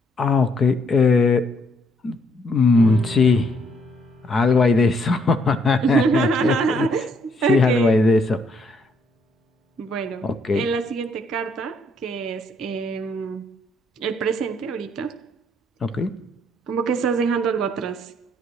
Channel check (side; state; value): both; normal; correlation 0.70